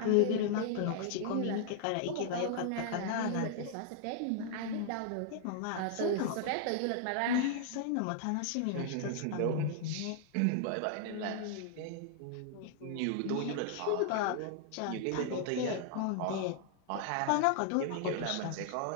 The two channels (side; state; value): both; different; correlation -0.01